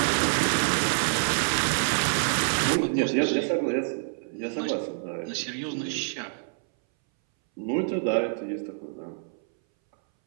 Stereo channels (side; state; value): left; silent; 60 dB below the other